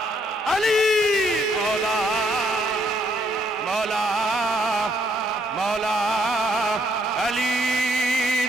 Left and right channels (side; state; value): both; normal; correlation 0.70